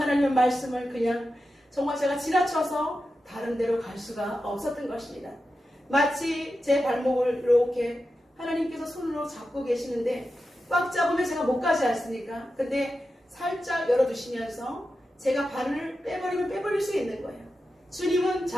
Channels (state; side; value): normal; both; correlation 0.91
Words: 말씀을 그냥 정말 제가 지나쳐서 다른 데로 갈 수가 없었던 것입니다. 마치 제 발목을 이렇게 하나님께서 손으로 잡고 계시는데 꽉 잡으면 제가 못 가지 않습니까? 근데 살짝 열어주시면서 제가 발을 빼버리면 빼버릴 수 있는 거예요. 주님은